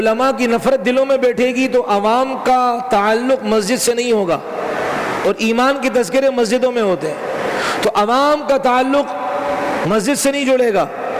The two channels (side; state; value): both; identical; correlation 1.00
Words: کی نفرت دلوں میں بیٹھے گی تو عوام کا تعلق مسجد سے نہیں ہوگا، اور ایمان کے تذکرے مسجدوں میں ہوتے ہیں، تو عوام کا تعلق مسجد سے نہیں جڑے گا،